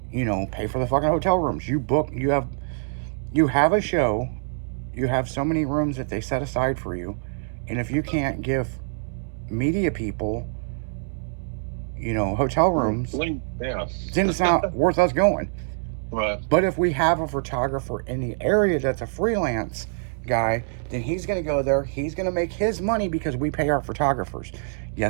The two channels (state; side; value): silent; left; 62 dB below the other